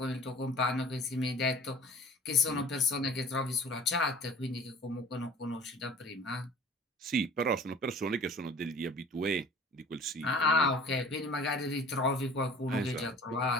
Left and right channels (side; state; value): both; normal; correlation 0.45